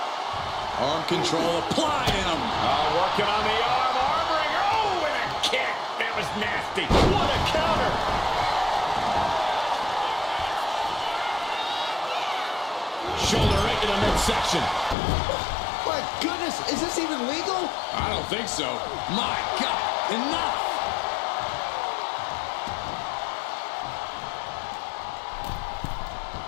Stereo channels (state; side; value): drops out; right; at 15.0 s